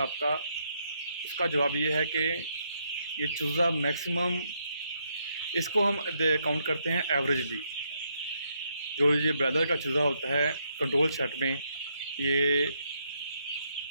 उसका जवाब ये है कि ये चूज़ा मैक्सिमम, इसको हम काउंट करते हैं एवरेजली। जो ये ब्रॉयलर का चूज़ा होता है कंट्रोल सेट में, ये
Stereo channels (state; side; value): inverted; both; correlation -0.76